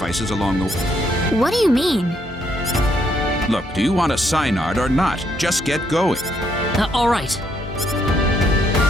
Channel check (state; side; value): normal; both; correlation 0.73